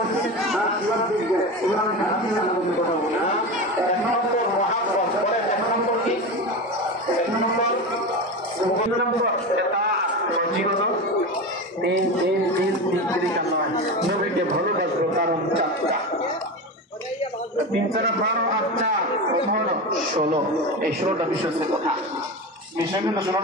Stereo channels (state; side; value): normal; both; correlation 0.23